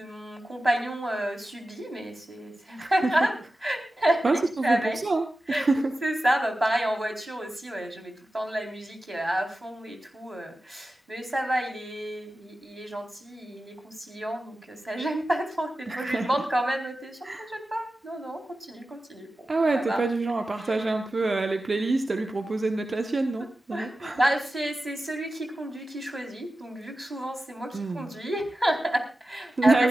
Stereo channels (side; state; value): both; normal; correlation 0.94